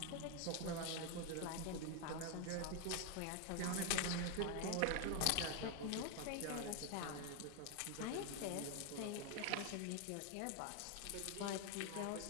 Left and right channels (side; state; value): both; different; correlation 0.01